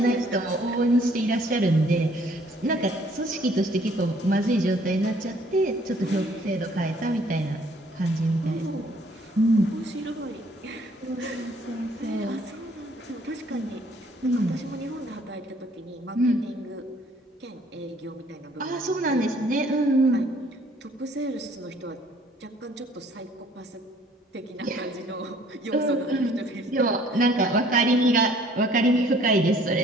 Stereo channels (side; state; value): both; normal; correlation 0.59